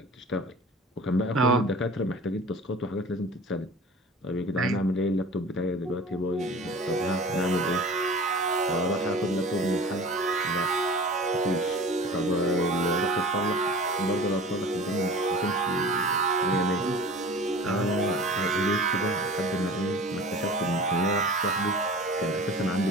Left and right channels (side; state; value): both; normal; correlation 0.40